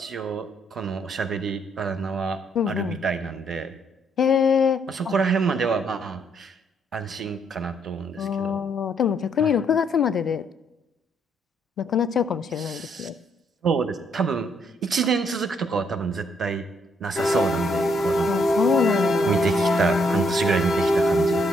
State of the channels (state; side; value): normal; both; correlation 0.71